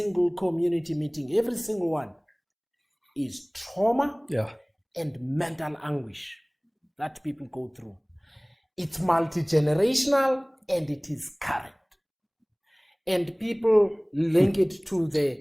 community meeting, every single one, is trauma and mental anguish that people go through. It's multi-generational and it is current. And people link it to the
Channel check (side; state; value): both; identical; correlation 1.00